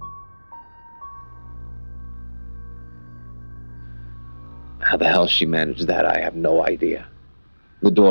How the hell she managed that, I have no idea. The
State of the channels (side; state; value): both; inverted; correlation -1.00